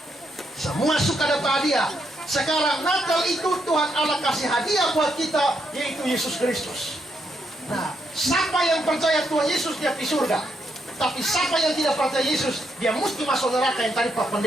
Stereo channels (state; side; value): normal; both; correlation 0.78